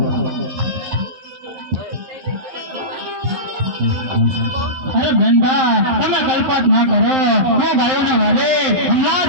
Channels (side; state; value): left; late; 11 ms